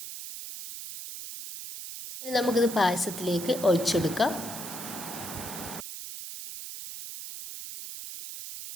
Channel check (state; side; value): noise; right; hiss, 9 dB below the sound